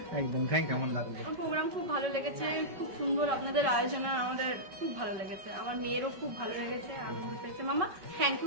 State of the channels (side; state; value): left; late; 5.3 ms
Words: একদম। কেমন লাগলো? প্রোগ্রাম খুব ভালো লেগেছে, খুব সুন্দর আপনাদের আয়োজন, আমাদের খুব ভালো লেগেছে, আমার মেয়েরও খুব ভালো লেগেছে, আনন্দ পেয়েছে। মামা থ্যাংক